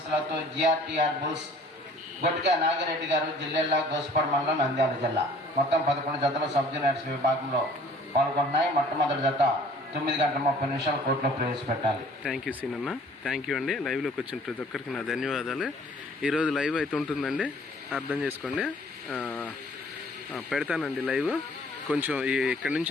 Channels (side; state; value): both; normal; correlation 0.54